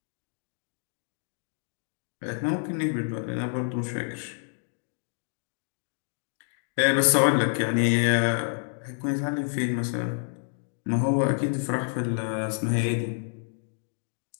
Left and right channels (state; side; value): silent; right; digital silence